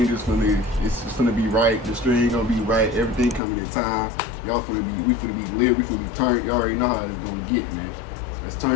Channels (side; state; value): right; drops out; at 3.4 s